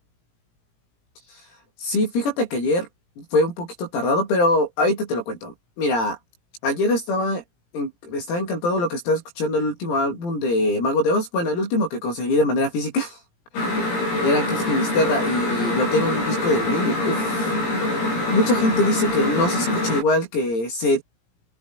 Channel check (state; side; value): late; right; 17 ms